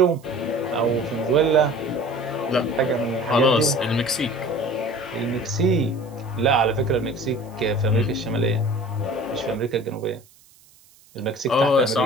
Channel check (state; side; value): noise; right; hiss, 28 dB below the sound